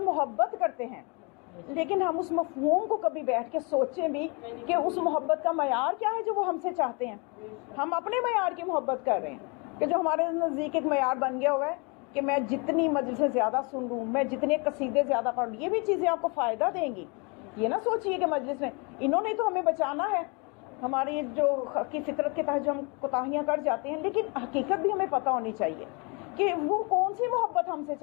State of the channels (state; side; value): quieter; right; 31.6 dB